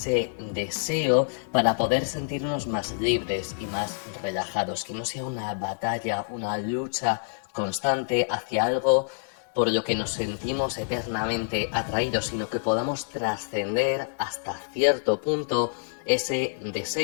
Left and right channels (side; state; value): right; silent; digital silence